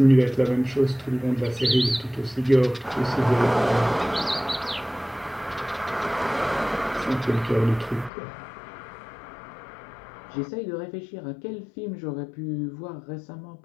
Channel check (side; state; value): right; drops out; at 8.1 s